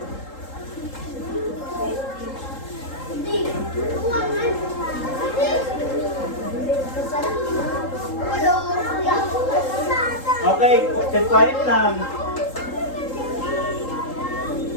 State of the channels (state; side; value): late; right; 3.8 ms